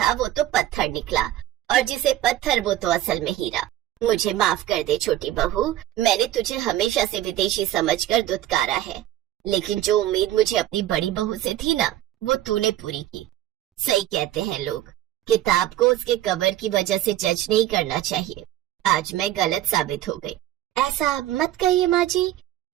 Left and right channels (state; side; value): quieter; left; 13.4 dB